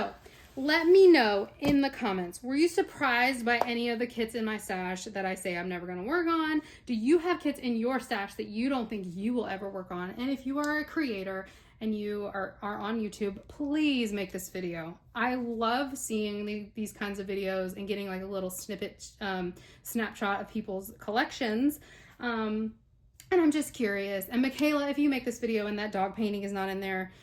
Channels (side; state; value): both; identical; correlation 1.00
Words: let me know in the comments, were you surprised by any of the kits in my stash that I say I'm never going to work on? Do you have kits in your stash that you don't think you will ever work on? And if you are a creator and you are on YouTube, please make this video. I love seeing these kinds of videos and getting like a little snippet, snapshot of people's collections. And I'm just curious. And Michaela, if you make this video and that dog painting is not in there,